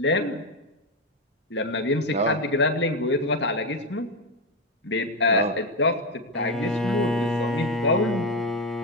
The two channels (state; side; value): normal; both; correlation 0.10